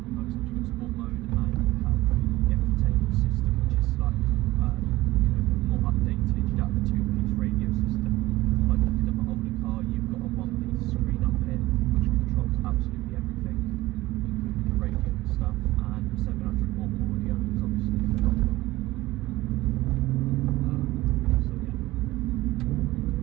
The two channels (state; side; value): quieter; left; 18.1 dB